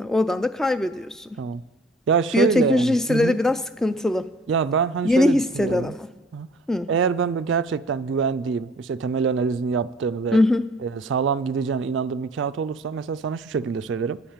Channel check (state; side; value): normal; both; correlation 0.54